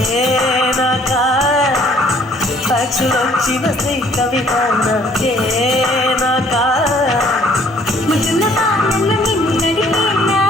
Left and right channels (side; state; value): both; normal; correlation 0.59